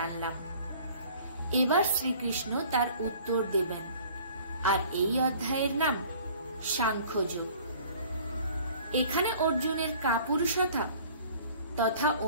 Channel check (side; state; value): both; inverted; correlation -0.51